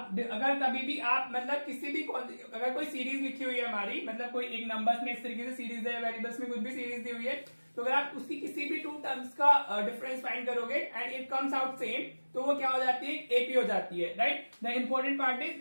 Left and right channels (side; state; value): both; inverted; correlation -1.00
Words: अगर कभी भी आप मतलब किसी भी अगर कोई सीरीज लिखी हुई है हमारी, मतलब कोई एक नंबर्स में इस तरीके से सीरीज है, वेरिएबल्स में कुछ भी सीरीज दी हुई है, तो अगर आप उसकी किसी भी 2 टर्म्स का डिफरेंस फाइंड करोगे and it comes out same, तो वो क्या हो जाती है? एपी हो जाती है, right? The important part